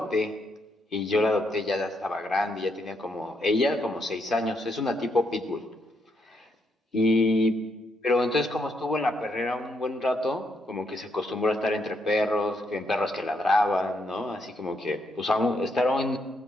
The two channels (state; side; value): normal; both; correlation 0.77